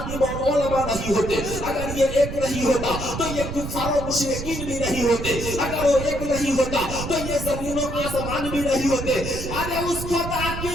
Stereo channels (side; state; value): right; noise; rumble, 6 dB below the sound